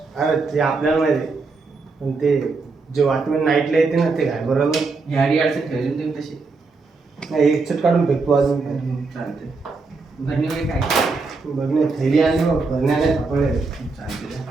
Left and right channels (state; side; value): quieter; left; 4.1 dB